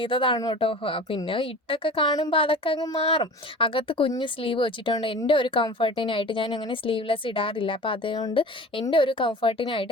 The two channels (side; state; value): both; normal; correlation 0.39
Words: കേട്ടോ. പിന്നെ ഇട്ടൊക്കെ കാണുമ്പോൾ അതൊക്കെ അങ്ങ് മാറും. അകത്ത് കുഞ്ഞ് സ്ലീവ് വെച്ചിട്ടുണ്ട്. എൻ്റെ ഒരു കംഫർട്ടിനായിട്ട് ഞാൻ അങ്ങനെ സ്ലീവ്ലെസ് ഇടാറില്ല. അപ്പോൾ അതുകൊണ്ട് എൻ്റെ ഒരു